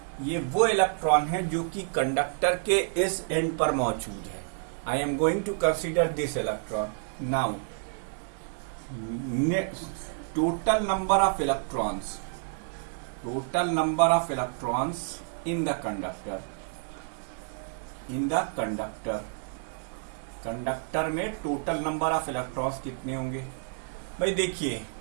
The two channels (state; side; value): silent; left; 58 dB below the other